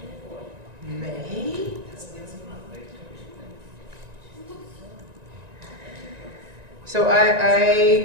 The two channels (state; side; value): late; left; 1.9 ms